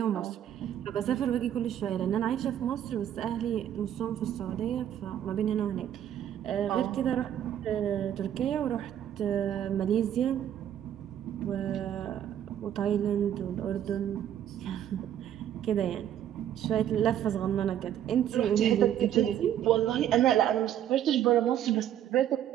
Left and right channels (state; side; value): quieter; left; 10.6 dB